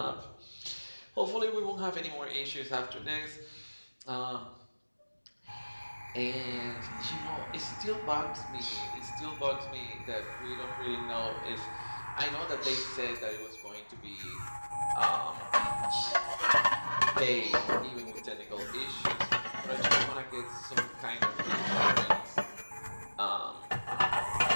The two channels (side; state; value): both; inverted; correlation -1.00